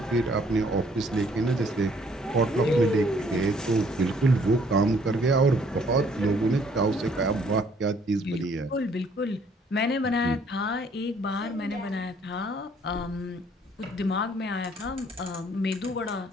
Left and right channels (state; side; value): normal; both; correlation 0.62